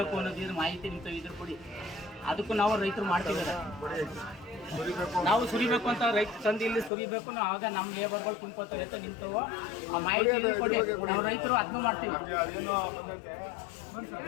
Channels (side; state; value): right; drops out; at 6.9 s